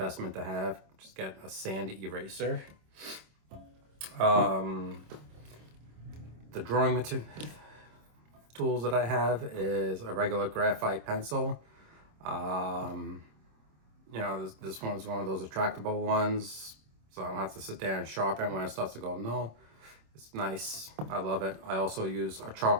to have. Just get a sand eraser. The drawing tools that I have is a regular graphite pencil. This one's one of those retractable ones, so I don't have to sit there and sharpen when it starts to go no. It's nice. I love it. I also use a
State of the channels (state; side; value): late; left; 26 ms